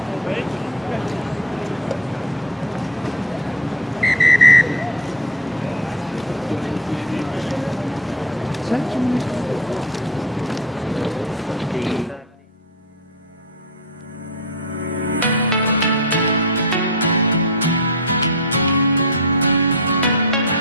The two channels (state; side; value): normal; both; correlation 0.25